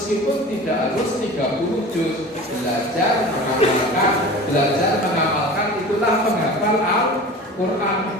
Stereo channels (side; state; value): both; normal; correlation 0.36